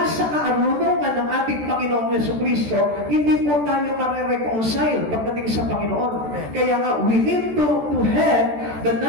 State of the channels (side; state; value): left; late; 14 ms